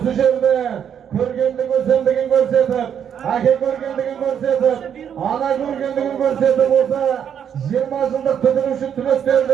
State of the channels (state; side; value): quieter; left; 8.5 dB